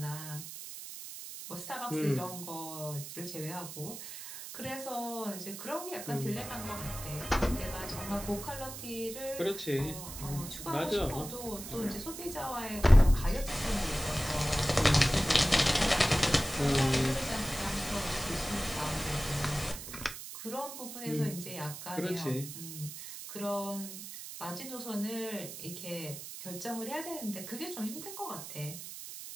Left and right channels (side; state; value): right; noise; hiss, 10 dB below the sound